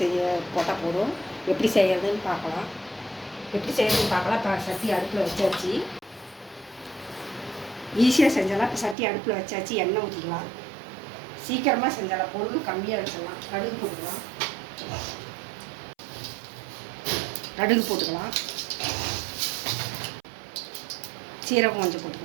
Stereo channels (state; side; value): drops out; left; at 9.0 s